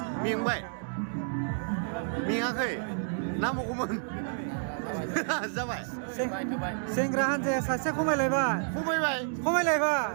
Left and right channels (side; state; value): left; silent; digital silence